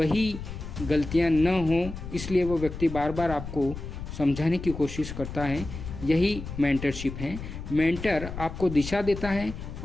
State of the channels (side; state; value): left; noise; rumble, 9 dB below the sound